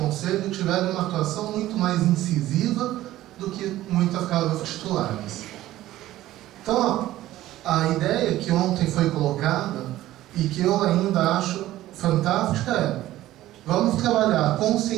tiveram uma atuação muito mais incisiva do que muitas casas titulares. Então, a ideia que ontem foi colocada e que eu ainda acho fantástica é: vamos trabalhar a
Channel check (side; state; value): left; quieter; 14.9 dB